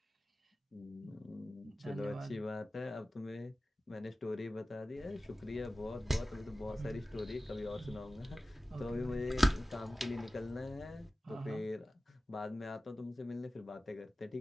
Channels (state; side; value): normal; both; correlation 0.96